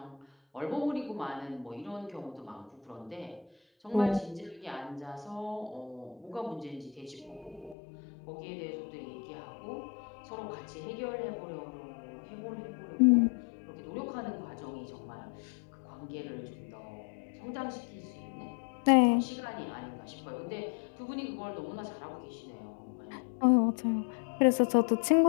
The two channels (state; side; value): drops out; right; at 7.8 s